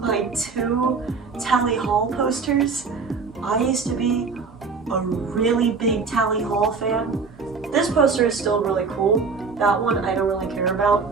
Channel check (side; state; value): left; quieter; 4.9 dB